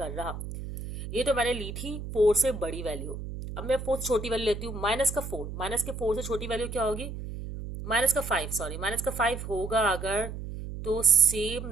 रहा। ये तो मैंने ली थी 4 से बड़ी वैल्यू। अब मैं 4 से छोटी वैल्यू लेती हूँ, -4, -4 से छोटी वैल्यू क्या होगी, -5, सॉरी -5 होगा अगर, तो सेम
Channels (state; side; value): noise; right; hum, 8 dB below the sound